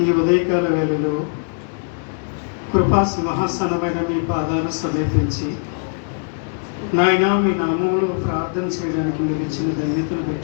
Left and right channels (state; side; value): silent; right; digital silence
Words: ఈ ఉదయకాల వేళలో కృపా సింహాసనమైన మీ పాదాలు సమీపించి నాయన మీ నామంలో ప్రార్థన చేయడానికి మీరు ఇచ్చిన ధన్యతను